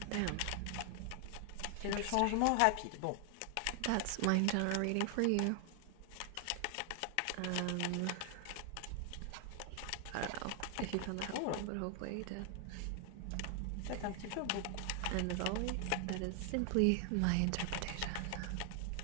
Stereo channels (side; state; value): both; different; correlation 0.00